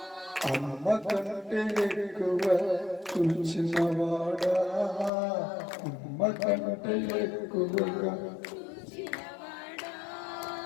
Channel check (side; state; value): right; drops out; at 5.1 s